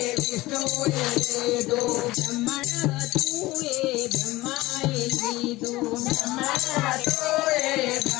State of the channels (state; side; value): quieter; right; 19.0 dB